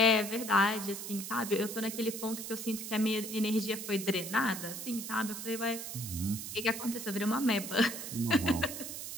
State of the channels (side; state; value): right; noise; hiss, 7 dB below the sound